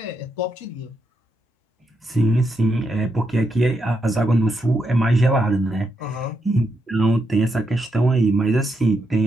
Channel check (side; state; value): both; normal; correlation 0.81